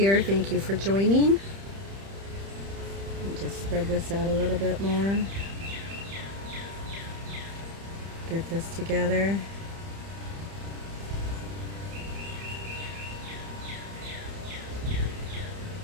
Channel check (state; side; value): late; left; 30 ms